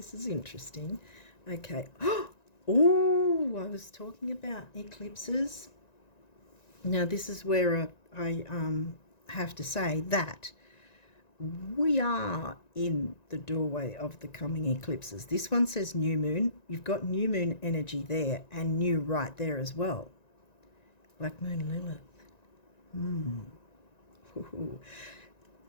is interesting. Okay. Oh, I was talking about eclipses. Now, this is where I have to say that we are in the doorway of the coming eclipses. This one says new moon. You've got new moon energy there and new right there as well. Black moon Lilith.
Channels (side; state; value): right; late; 1.9 ms